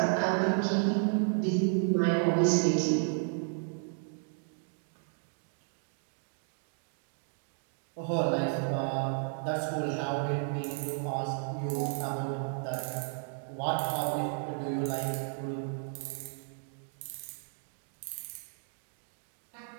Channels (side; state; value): left; silent; 56 dB below the other